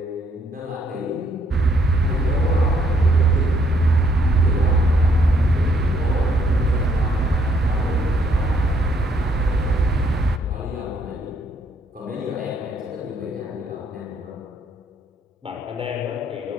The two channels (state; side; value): normal; both; correlation 0.70